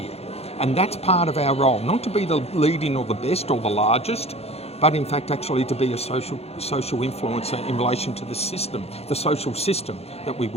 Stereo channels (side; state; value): right; late; 0.30 ms